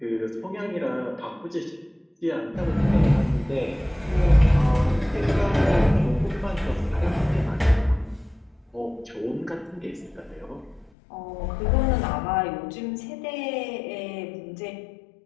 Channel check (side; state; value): right; drops out; at 10.9 s